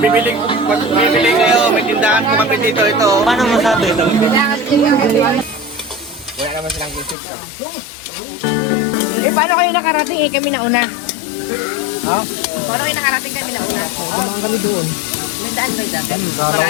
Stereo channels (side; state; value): right; drops out; at 7.2 s